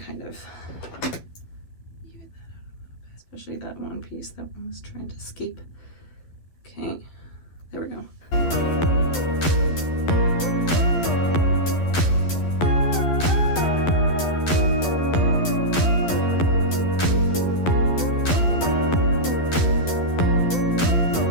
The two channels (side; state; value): right; late; 12 ms